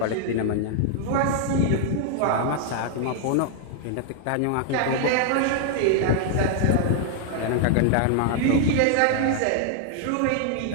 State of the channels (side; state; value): both; different; correlation 0.00